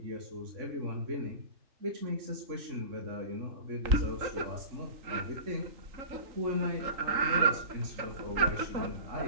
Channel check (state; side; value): late; left; 3.8 ms